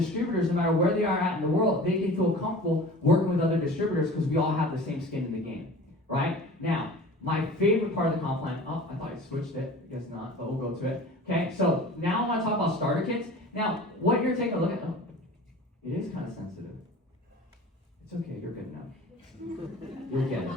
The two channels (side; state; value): both; normal; correlation 0.40